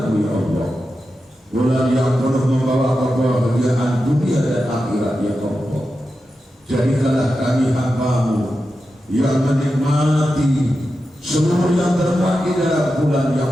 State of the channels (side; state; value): both; normal; correlation 0.90